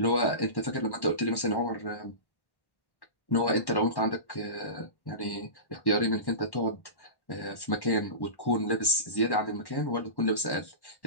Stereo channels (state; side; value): late; right; 1.1 ms